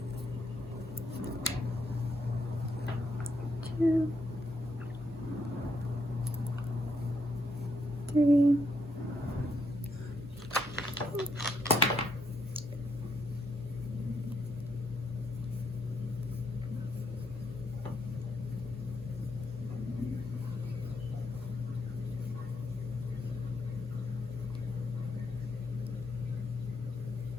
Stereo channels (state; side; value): normal; both; correlation 0.76